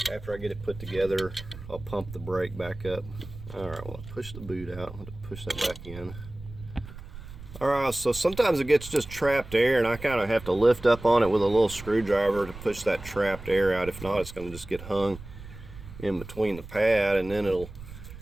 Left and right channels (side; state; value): right; noise; rumble, 14 dB below the sound